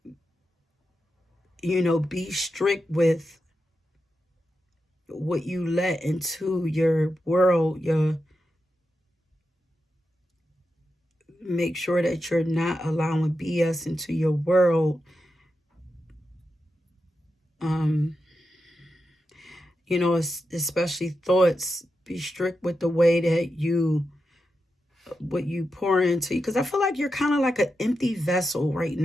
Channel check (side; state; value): both; normal; correlation 0.88